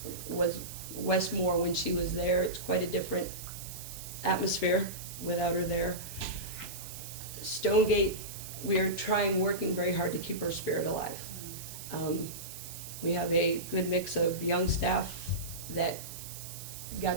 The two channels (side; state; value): right; noise; hiss, 11 dB below the sound